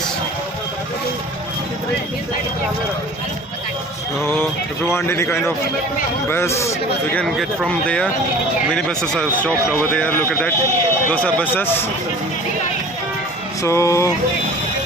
So if you want any kind of bus, you can get from there. Many buses are stopped over there. Look at that. Those are buses. So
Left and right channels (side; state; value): both; normal; correlation 0.44